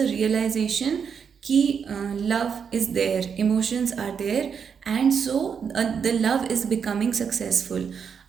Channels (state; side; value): quieter; left; 6.8 dB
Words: रियलाइजेशन कि love is there, emotions are there, and so the love is becoming successful.